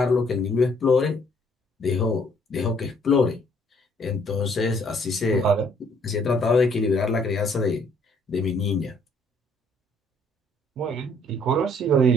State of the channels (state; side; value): normal; both; correlation 0.64